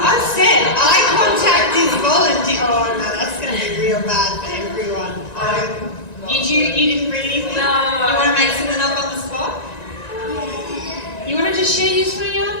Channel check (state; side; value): late; right; 1.9 ms